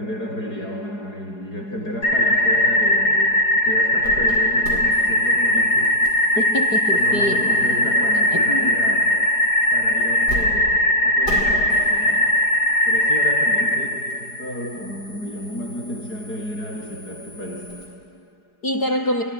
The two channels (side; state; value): right; late; 4.8 ms